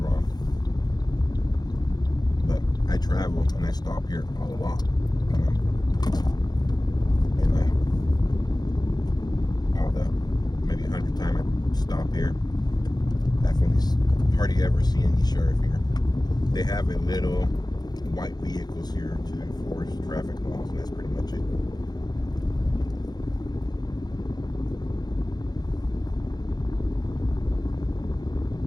But I travel and I stop here a lot. And all the maybe 100 times I stop here, definitely hardly ever see any sheriff here. They have a little white vehicles here to enforce traffic laws, and that's pretty much it.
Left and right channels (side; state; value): right; late; 0.20 ms